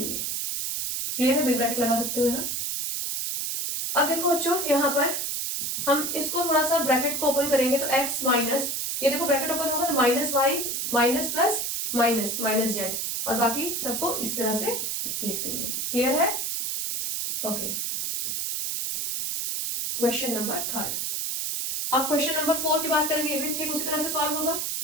क्लियर है, बिग ब्रैकेट लगा सकते हो यहाँ। अब देखो बच्चों यहाँ पर हम इसको थोड़ा सा ब्रैकेट को ओपन करेंगे तो x माइनस, ये देखो ब्रैकेट ओपन होगा तो minus Y minus plus minus minus Z और बाकी सबको इस तरह से लिख देंगे। क्लियर है, ओके। Question number 3। अब क्वेश्चन नंबर 4 की बात करेंगे, ये भी ठीक उसी तरह से सॉल्व होगा।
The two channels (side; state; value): right; noise; hiss, 1 dB below the sound